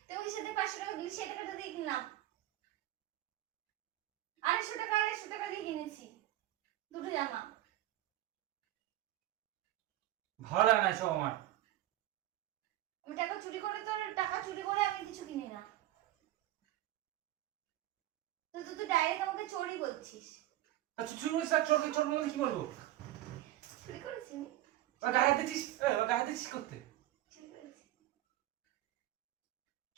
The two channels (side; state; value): left; quieter; 14.6 dB